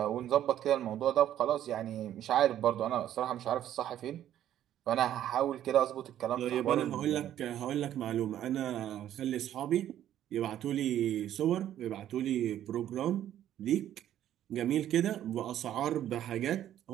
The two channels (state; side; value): quieter; left; 11.5 dB